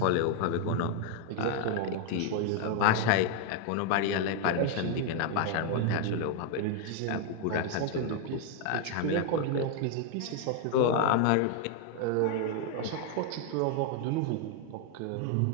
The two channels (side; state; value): both; different; correlation 0.01